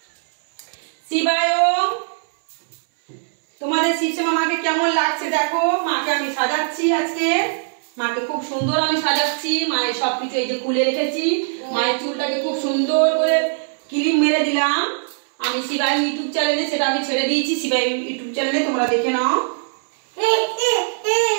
শিবায় তোমাদের শিবশ্যামা মাকে কেমন লাগছে দেখো। মাকে আমি সাজাচ্ছি আজকে, মাকে খুব সুন্দর আমি সাজাচ্ছি। মায়ের সবকিছু এই যে খুলে রেখেছি, মায়ের চুলটাকে খুব সুন্দর করে ক্লিপ মেরে দিলাম আমি। শিবাই ইউটিউব চ্যানেলে সেটা আমি ছেড়ে দিয়েছি, শিবাই ইউটিউব চ্যানেলে তোমরা দেখে নাও।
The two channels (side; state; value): left; silent; 65 dB below the other